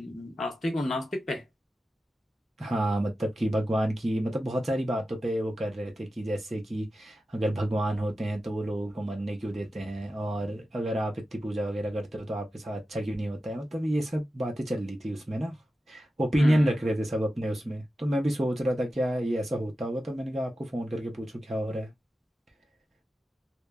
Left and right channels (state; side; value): normal; both; correlation 0.92